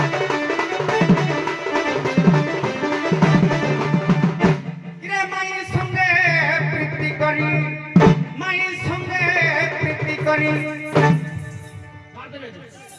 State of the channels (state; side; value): identical; both; correlation 1.00